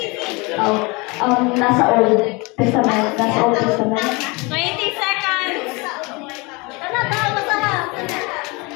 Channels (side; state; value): right; quieter; 26.8 dB